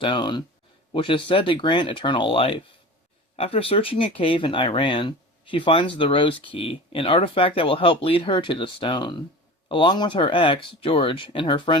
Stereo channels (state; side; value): normal; both; correlation 0.35